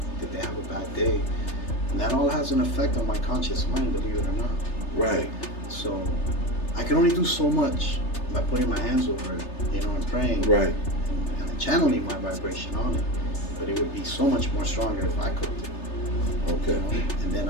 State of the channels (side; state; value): right; late; 3.3 ms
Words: Did they have a bad day? And that all has an effect on my conscious mind, believe it or not. Right. So I can only do so much by putting my hands over it, and praying. Right. And channeling my vibration on it. But it would be so much more stronger if I cooked it. Okay. And then